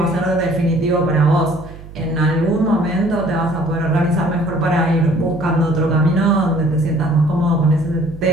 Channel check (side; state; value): right; noise; hum, 16 dB below the sound